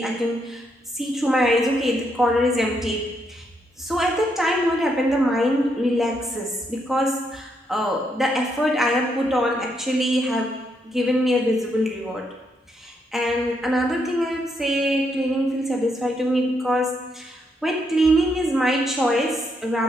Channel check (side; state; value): both; normal; correlation 0.77